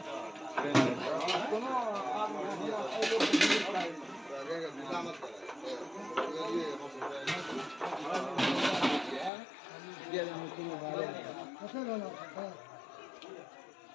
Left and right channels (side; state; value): right; drops out; at 9.3 s